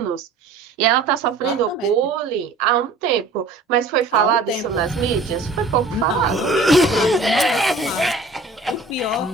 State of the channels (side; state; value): left; quieter; 3.4 dB